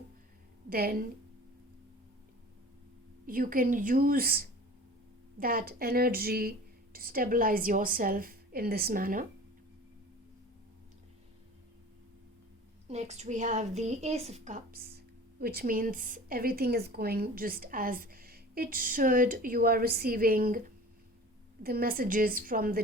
then you can use that energy to stabilize yourself in this manner. Next we have the Ace of Cups, which means everything is going just as it should. You are receiving the messages from the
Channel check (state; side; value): normal; both; correlation 0.41